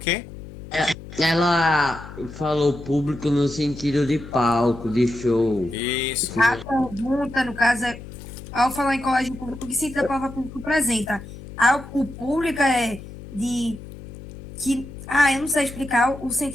Ela falou público no sentido de palco, de show. Isso. A pergunta, no caso, é, ao falar em colégio público, o que sentido a palavra público apresenta? O público é de... que eu não sei explicar o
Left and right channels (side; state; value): left; noise; hum, 14 dB below the sound